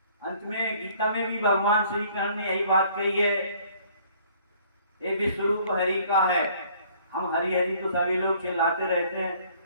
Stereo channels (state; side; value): inverted; both; correlation -0.58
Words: अंत में गीता में भी भगवान श्री कृष्ण ने यही बात कही है, ये विश्वरूप हरि का है। हम हरि हरि तो सभी लोग चिल्लाते रहते हैं,